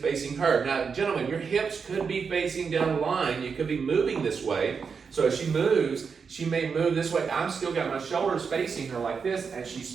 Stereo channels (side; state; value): left; quieter; 5.7 dB